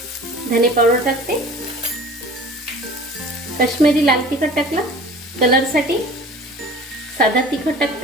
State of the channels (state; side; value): normal; both; correlation 0.44